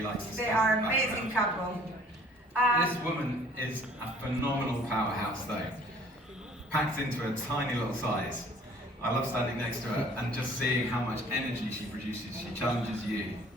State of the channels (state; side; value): normal; both; correlation 0.54